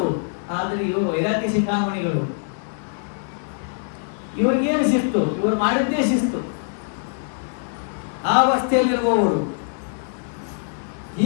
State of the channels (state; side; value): silent; right; digital silence